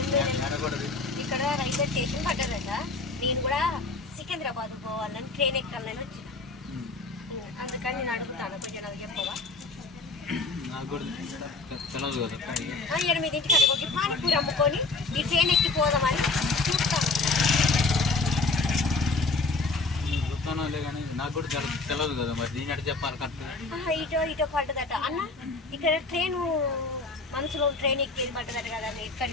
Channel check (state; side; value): quieter; right; 3.7 dB